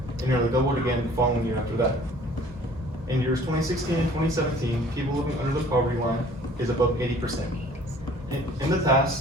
and nearly doubled again the following year after that. In years 2016 and 2017, people living under the poverty line is above 80%. In the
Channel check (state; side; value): normal; both; correlation 0.52